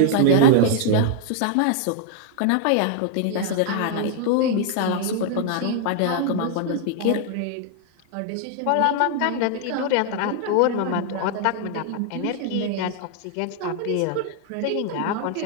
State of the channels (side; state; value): both; different; correlation 0.00